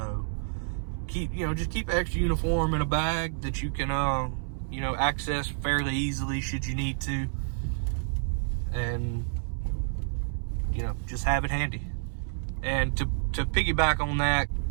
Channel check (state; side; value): silent; left; 59 dB below the other